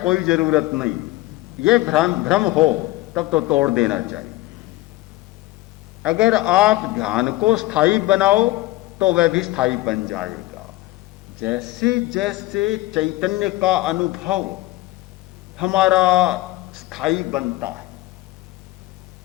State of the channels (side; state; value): right; quieter; 18.1 dB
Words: जरूरत नहीं। यह भ्रम हो तब तो तोड़ देना चाहिए। अगर आप ध्यान को स्थायी बनाओ तो वह भी स्थायी बन जाएगा। जैसे जैसे चैतन्य का अनुभव हमारा स्थायी बनता है,